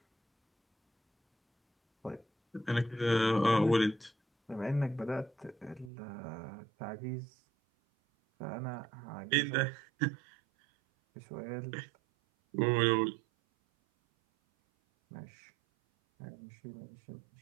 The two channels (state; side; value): drops out; left; at 5.9 s